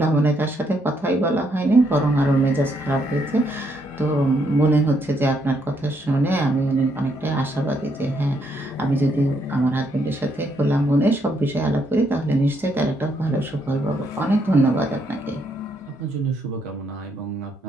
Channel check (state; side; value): normal; both; correlation 0.74